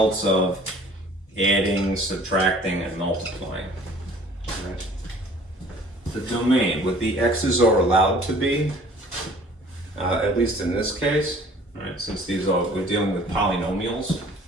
of adding, subtracting, and multiplying. Right. The domain, what the x's are allowed to be, at least in this case, right, since we're dealing with polynomials.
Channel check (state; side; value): normal; both; correlation 0.51